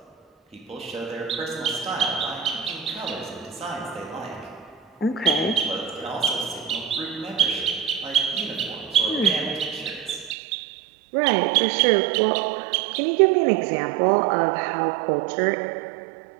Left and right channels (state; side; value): drops out; left; at 10.4 s